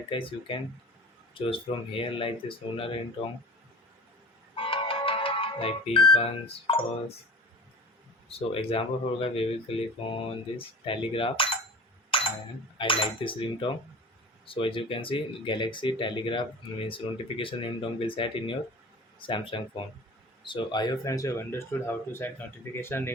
guys you can choose from here like this lunar ringtone like P1s first. So example for guys, we will click on this telegraph and I like this ringtone. So as you can see, Galaxy Telegraph means notification ringtone will set in your Samsung phone. So I hope friends you have understood how to set notification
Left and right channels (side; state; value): both; normal; correlation 0.38